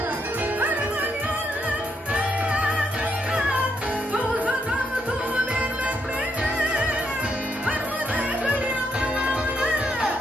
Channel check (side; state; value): both; normal; correlation 0.77